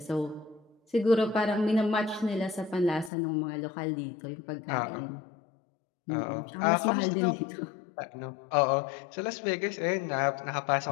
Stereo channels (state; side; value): drops out; right; at 3.1 s